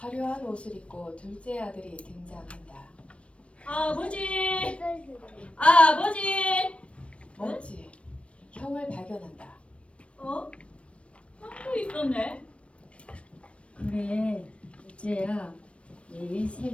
옷을 입고 둘째 아들이 등장한다. 아버지! 아버지! 멋지. 형을 발견한다. 어? 형도 있었네. 그래, 둘째야. 매일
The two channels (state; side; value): late; right; 0.061 ms